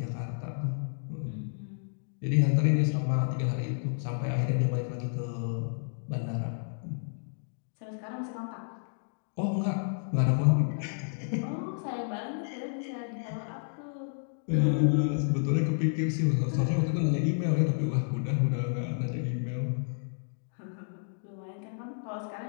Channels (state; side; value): silent; right; digital silence